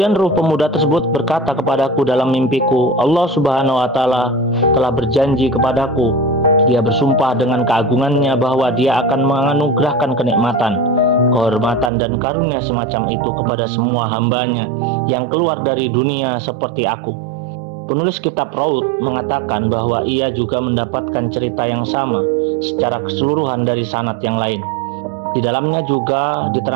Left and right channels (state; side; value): drops out; left; at 11.9 s